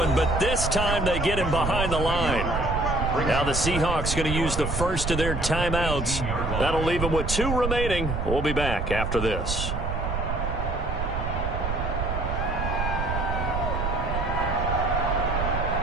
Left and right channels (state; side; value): noise; right; rumble, 2 dB below the sound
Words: but this time they get him behind the line. Now the Seahawks going to use the first of their timeouts. That'll leave them with 2 remaining. We'll be back after this.